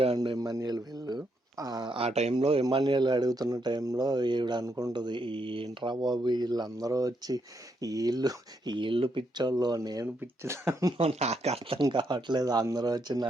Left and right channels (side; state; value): both; normal; correlation 0.78